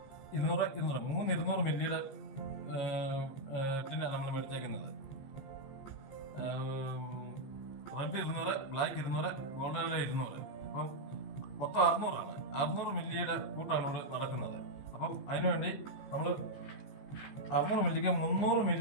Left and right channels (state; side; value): late; right; 15 ms